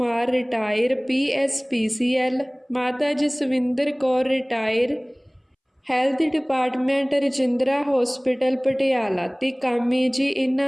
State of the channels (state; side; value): identical; both; correlation 1.00